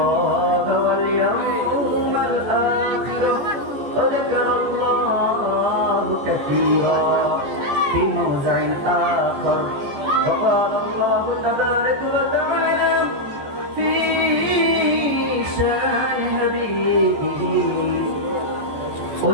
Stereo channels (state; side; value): late; left; 14 ms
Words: واليوم الآخر وذكر الله كثيرا في موضع آخر. وقال الله تبارك وتعالى في شان حبيبه: